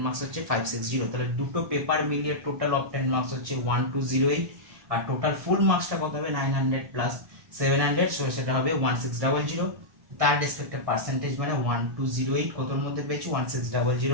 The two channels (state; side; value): late; left; 1.7 ms